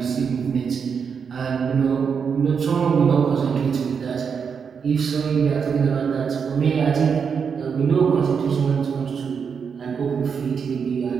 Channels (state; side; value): quieter; left; 6.4 dB